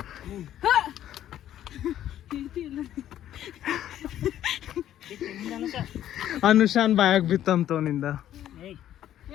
ಅನುಷಾನ್ ಬಾಯಾಗ ಬಿತ್ತಂತವನಿಂದ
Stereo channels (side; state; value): right; quieter; 11.7 dB